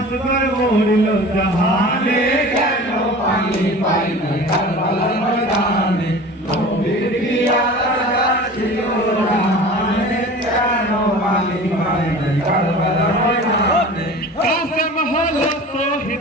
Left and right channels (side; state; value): both; normal; correlation 0.39